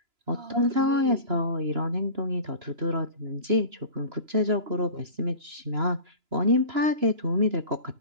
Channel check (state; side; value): late; left; 2.9 ms